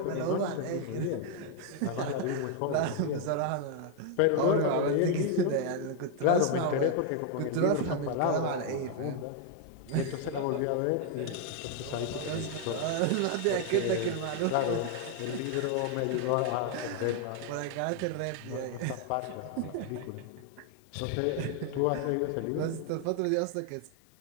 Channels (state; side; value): different; both; correlation 0.00